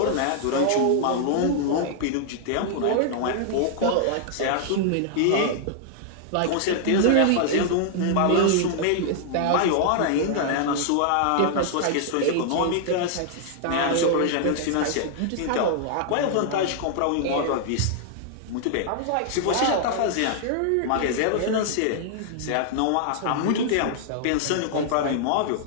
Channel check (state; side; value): different; both; correlation -0.01